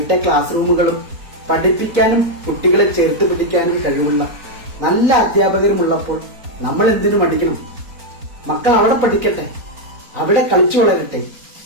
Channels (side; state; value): left; late; 4.0 ms